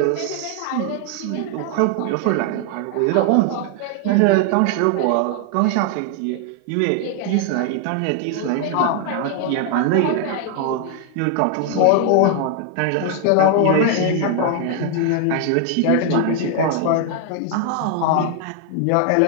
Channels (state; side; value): different; both; correlation 0.00